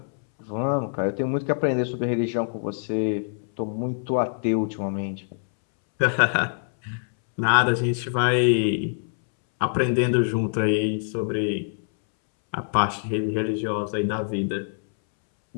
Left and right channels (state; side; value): silent; right; 62 dB below the other